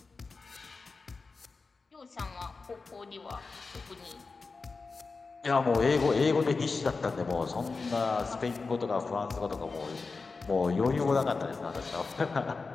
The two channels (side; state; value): right; quieter; 4.2 dB